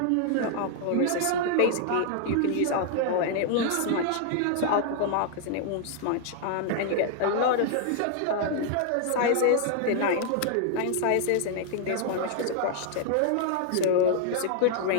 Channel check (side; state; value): both; different; correlation -0.01